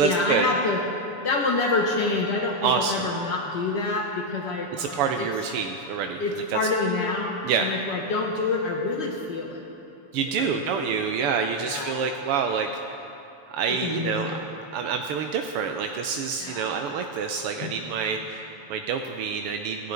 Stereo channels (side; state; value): left; late; 7.0 ms